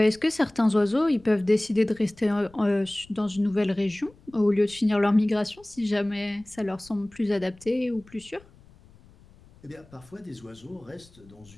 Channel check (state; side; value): noise; left; rumble, 26 dB below the sound